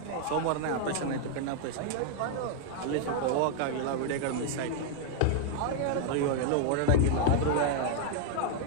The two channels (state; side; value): different; both; correlation 0.00